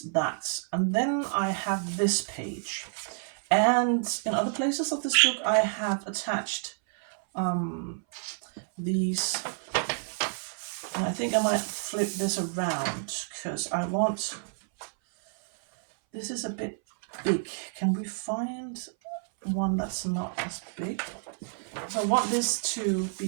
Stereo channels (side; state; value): left; silent; 58 dB below the other